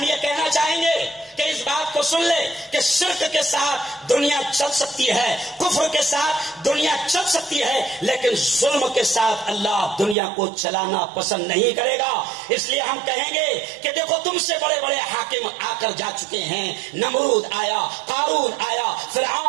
یہ کہنا چاہیں گے کہ اس بات کو سن لے کہ شرک کے ساتھ دنیا چل سکتی ہے، کفر کے ساتھ دنیا چل سکتی ہے، لیکن ظلم کے ساتھ اللہ دنیا کو چلانا پسند نہیں کرے گا۔ اس لیے ہم کہیں گے کہ دیکھو تم سے بڑے بڑے حاکم آ کر جا چکے ہیں، نمرود آیا، قارون آیا،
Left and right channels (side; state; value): left; drops out; at 10.2 s